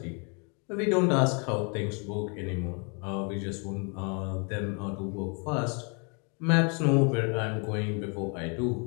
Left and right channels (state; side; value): quieter; right; 36.5 dB